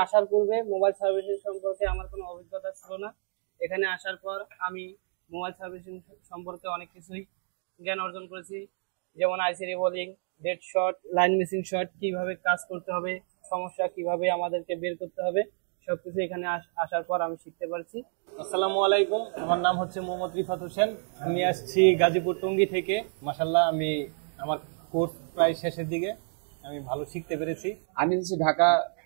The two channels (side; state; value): left; silent; digital silence